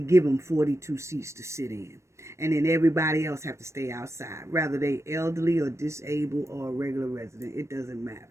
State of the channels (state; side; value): late; left; 0.14 ms